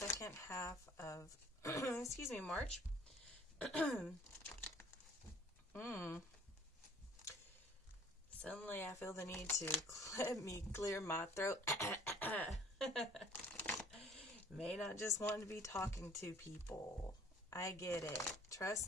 half of, excuse me, March. Suddenly I feel the need to let me clear my throat. May not just want to be talking to people. I get it.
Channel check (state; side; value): normal; both; correlation 0.54